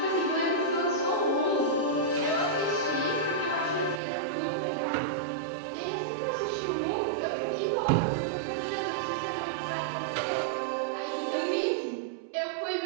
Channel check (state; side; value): drops out; left; at 4.0 s